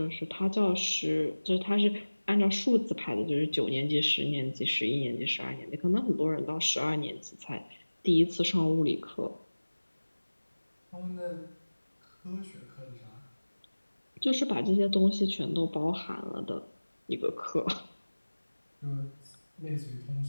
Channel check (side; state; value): both; inverted; correlation -1.00